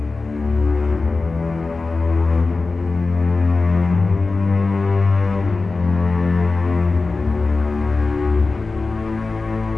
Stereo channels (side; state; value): right; quieter; 3.8 dB